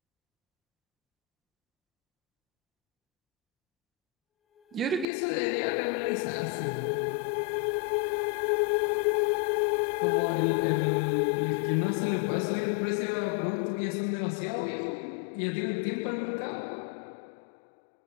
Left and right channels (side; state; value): right; drops out; at 5.1 s